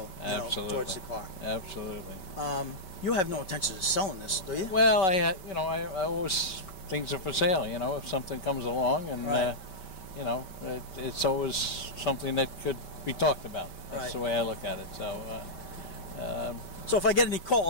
Absolutely. towards the car. Absolutely. You have no intention of selling this, do you? Well, I always, things are for sale. You know, if something comes along, and Right. it's always something that could be talked about. That's Right. the way I look at it. So. So if I get any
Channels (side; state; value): right; late; 5.2 ms